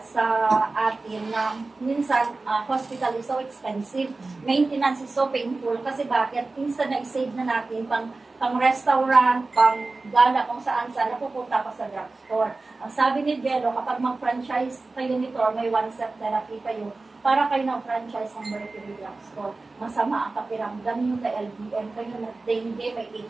atin na minsan hospital is so expensive, maintenance is so painful kasi bakit? Minsan na-save na natin pang restaurant, pang gala, kung saan napupunta ka sa drugstore. Ang sabi ni Jello, kapag mag-franchise kayo nito or may one-step therapy kayo, para kayo ng franchise ng Mercury Drugstore. Masama ang kapiramdam nyo na LBM, kayo na dengue, may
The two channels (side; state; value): left; quieter; 3.5 dB